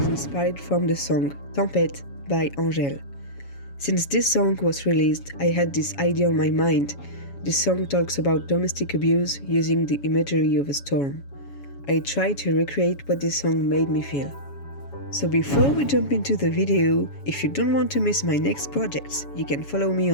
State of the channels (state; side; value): late; right; 7.2 ms